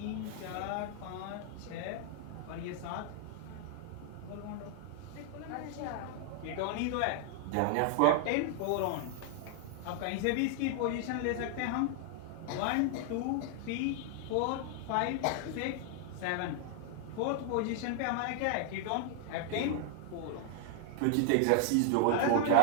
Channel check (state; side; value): different; both; correlation 0.00